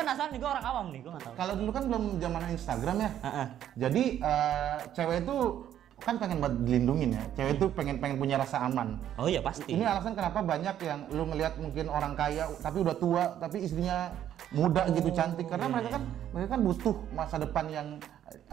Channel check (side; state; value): left; quieter; 10.8 dB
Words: nih, gue orang awam nih, gue nggak tahu. Kalau dulu kan belum zaman Instagram ya. Jadi cewek itu kan pengen buat dilindungin ya. Cewek itu pengen punya rasa aman. Oh iya pasti. Ini alasan kenapa banyak yang lu ngelihat mungkin orang kaya tapi udah tua tapi istrinya muda gitu, cantik, karena mereka kan butuh masa depan yang